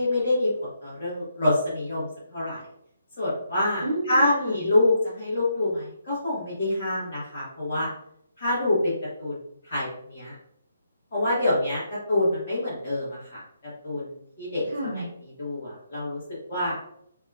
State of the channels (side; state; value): both; inverted; correlation -0.79